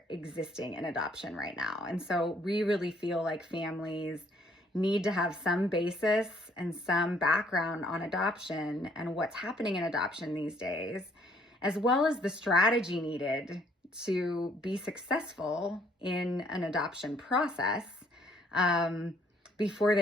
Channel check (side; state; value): both; normal; correlation 0.64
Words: existing in adoption right now. And so we really feel like families need to have some basis and some background on adoption and what's happening in adoption these days, as well as the strategy needed to be successful in an adoption process before